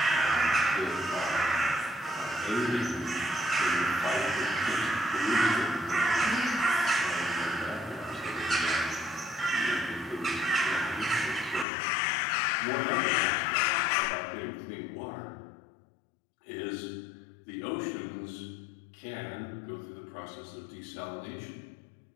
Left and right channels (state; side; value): drops out; right; at 11.7 s